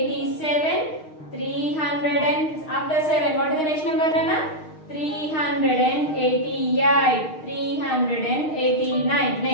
300 and after 7 what is the next number Nana? 388, 389.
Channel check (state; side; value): late; right; 6.4 ms